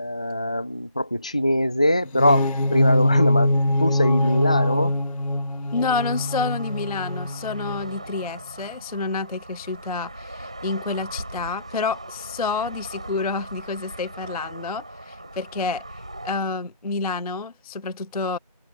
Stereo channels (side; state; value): both; inverted; correlation -0.68